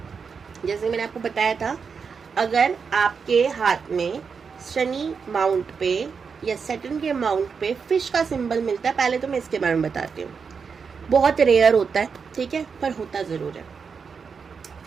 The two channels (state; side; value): quieter; left; 5.8 dB